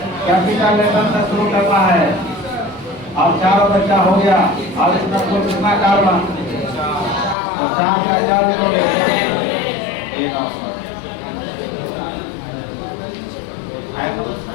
कैपिटल लेटर से शुरू करना है। अब चारों बच्चा हो गया। अब इसमें कुल कितना कार्बन? तो 4 का 4 लिखोगे।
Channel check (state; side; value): drops out; right; at 7.4 s